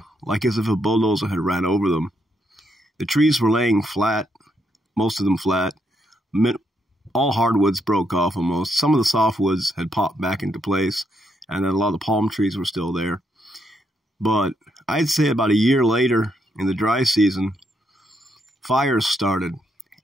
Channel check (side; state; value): both; normal; correlation 0.77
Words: like as if a bulldozer had ran over them. The trees were laying flat, most of them flat. All hardwoods broke off almost. Some of the softwoods had popped back into place, and then a lot of the palm trees were still there. But I'd say about a year later, in the dry season, fires started,